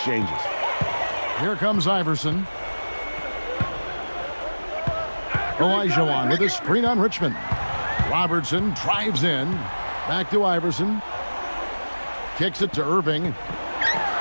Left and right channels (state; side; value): inverted; both; correlation -1.00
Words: Here comes Iverson. Olajuwon with a screen on Richmond. Robertson drives in. Back to Iverson. Kicks it to Irving.